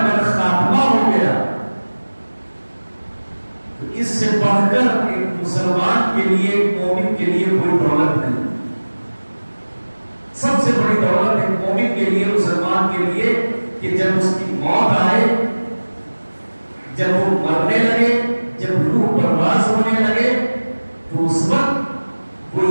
خاتمہ ہو گیا تو اس سے بڑھ کر ایک مسلمان کے لیے، ایک مومن کے لیے کوئی دولت نہیں۔ سب سے بڑی دولت ایک مومن کے لیے، مسلمان کے لیے، کہ جب اس کی موت آئے، جب وہ مرنے لگے، جب روح پرواز ہونے لگے، تو اس وقت وہ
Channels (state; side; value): inverted; both; correlation -1.00